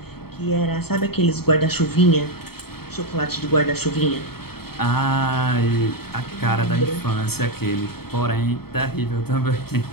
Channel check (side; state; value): right; late; 0.96 ms